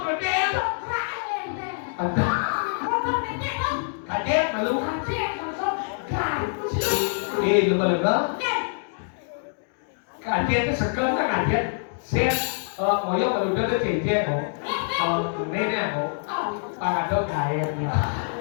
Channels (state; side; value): silent; right; digital silence